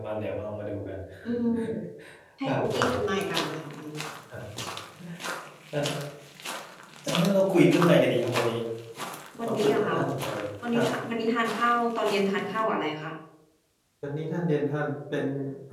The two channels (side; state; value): both; identical; correlation 1.00